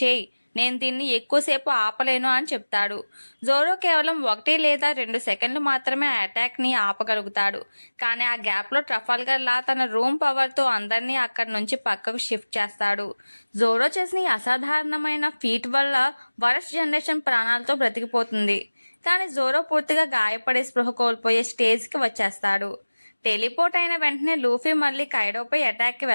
నేను దీన్ని ఎక్కువసేపు ఆపలేను అని చెప్తాడు. జోరో కేవలం 1 లేదా 2 సెకండ్లు మాత్రమే ఆ అటాక్ ని ఆపగలుగుతాడు. కానీ ఆ గ్యాప్ లో ట్రఫాల్గర్ లా తన రూమ్ పవర్ తో అందరినీ అక్కడి నుంచి పక్కకు షిఫ్ట్ చేస్తాడు. జోరో చేసిన ఈ అసాధారణమైన ఫీట్ వల్ల వరస్ట్ జనరేషన్ ప్రాణాలతో బ్రతికిపోతుంది. కానీ జోరో పూర్తిగా గాయపడే స్పృహ కోల్పోయే స్టేజ్ కి వచ్చేస్తాడు. టెలిపోర్ట్ అయిన వెంటనే లూఫీ మళ్ళీ కైడోపై అటాక్ కి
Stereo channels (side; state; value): both; inverted; correlation -1.00